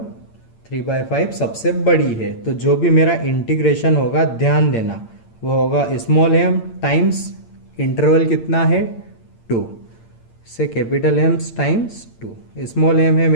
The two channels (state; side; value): late; right; 8.8 ms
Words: 3/5 सबसे बड़ी है। तो जो भी मेरा इंटीग्रेशन होगा ध्यान देना वो होगा स्मॉल एम टाइम्स इंटरवल कितना है 2 से capital M times 2। Small M है